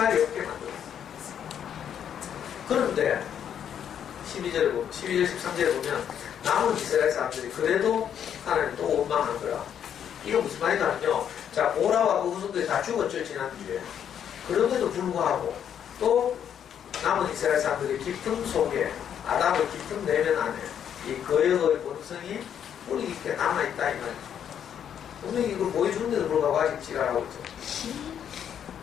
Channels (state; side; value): quieter; right; 9.0 dB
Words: 없게 만들었어. 그런데 12절, 13절에 보면 남은 이스라엘 사람들이 그래도 하나님 또 원망한 거야. 이거 무슨 말이냐면요. 자, 보라와 그 후손들이 다 죽었죠, 지난주에. 그럼에도 불구하고 또 남은 이스라엘 사람들이 깊은 속에, 아담의 깊은 내면 안에 이 거역의 본성이 뿌리 깊게 남아있다, 이 말이죠. 분명히 이걸 보여주는데도 불구하고 아직 지랄하고 있죠.